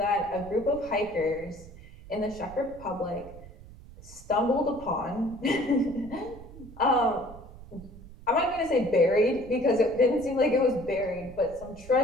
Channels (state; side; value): noise; right; rumble, 17 dB below the sound